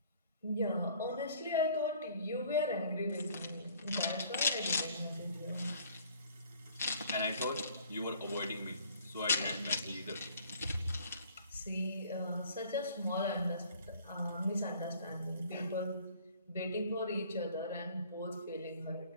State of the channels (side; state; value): both; inverted; correlation -0.55